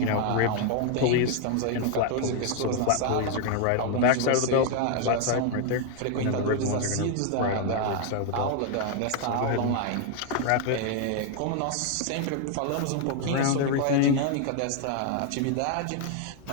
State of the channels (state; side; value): different; both; correlation 0.00